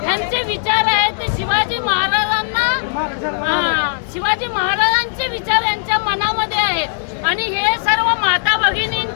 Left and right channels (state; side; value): silent; right; 67 dB below the other